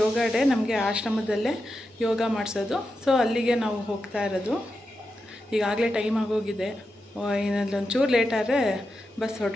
ಯೋಗ ಡೇ ನಮಗೆ ಆಶ್ರಮದಲ್ಲೇ ಯೋಗ ಮಾಡಿಸೋದು. ಸೊ ಅಲ್ಲಿಗೆ ನಾವು ಹೋಗ್ತಾ ಇರೋದು. ಈಗಾಗಲೇ ಟೈಮ್ ಆಗೋಗಿದೆ. ಇನ್ನೊಂಚೂರು ಲೇಟ್ ಆದರೆ ಬಸ್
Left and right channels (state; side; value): normal; both; correlation 0.88